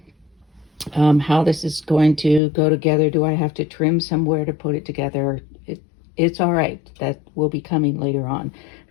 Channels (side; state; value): right; drops out; at 2.4 s